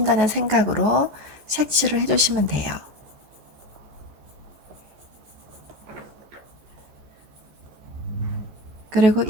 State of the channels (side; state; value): left; late; 14 ms